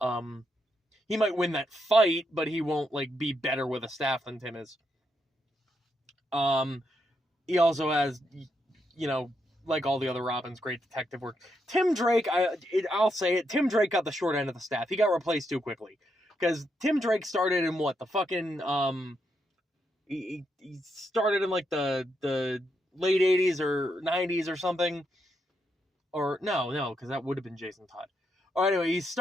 He might win that fight, but he won't be better with a staff than Tim is. He also has, like all the other Robins, great detective work. Tim Drake, I'll say it, Tim Drake got the short end of the staff. He got replaced too quickly. Because Tim Drake started in he started in the late 80s or 90s or something. Or, no, because that would have been Jason Todd. Or anyway, he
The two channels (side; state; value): both; normal; correlation 0.80